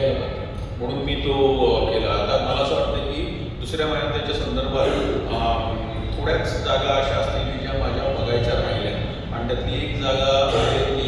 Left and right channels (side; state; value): both; identical; correlation 1.00